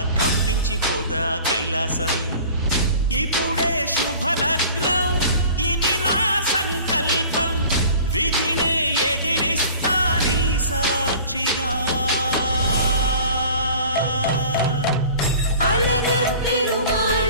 కంపించిపోదా కైలాసం. ఇప్పుడే శుభలగ్నం, ఇది నా సంకల్పం, విధినే ఎదిరిస్తా నీ సాక్షిగా. అళగర్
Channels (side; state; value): both; inverted; correlation -0.45